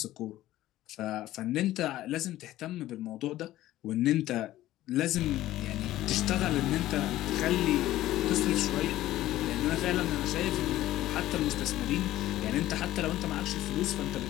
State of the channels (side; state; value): right; quieter; 14.9 dB